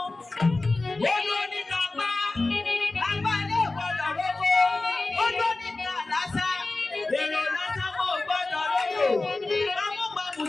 Ó ló ní kápá. Lápá ilé ìgbọ́dọ̀ lóko. Ó ló ní ká lásà. Èrò lásà kò gbọ́dọ̀ lóko. Amúgbàmù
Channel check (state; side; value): quieter; right; 3.2 dB